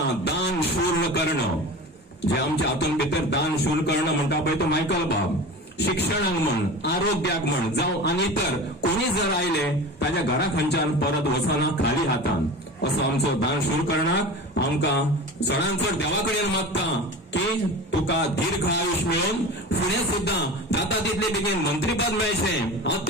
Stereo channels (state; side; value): normal; both; correlation 0.33